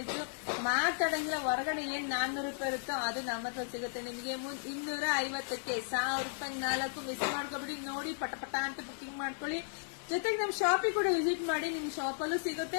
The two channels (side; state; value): right; silent; 54 dB below the other